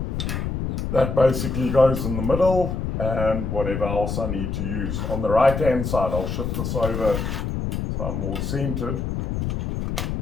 That basically goes in the middle, and whatever else I need to use. On the right hand side, I'll shift this over so I'm more centered.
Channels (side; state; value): left; noise; rumble, 2 dB below the sound